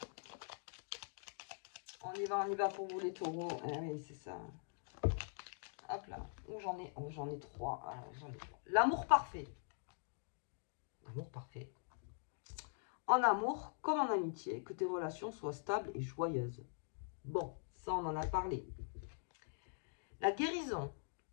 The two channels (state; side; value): silent; right; digital silence